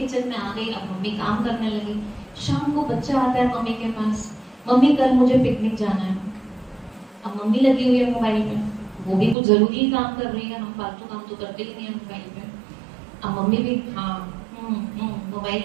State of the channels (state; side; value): drops out; left; at 9.3 s